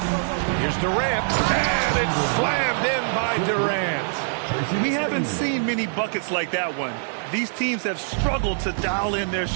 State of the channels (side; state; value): left; silent; digital silence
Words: Here's Durant. And it's slammed in by Durant. We haven't seen many buckets like that one. These teams have struggled to dial in their